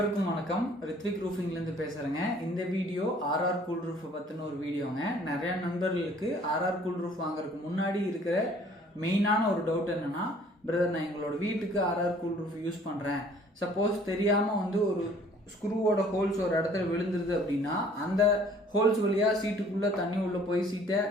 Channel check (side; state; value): both; normal; correlation 0.56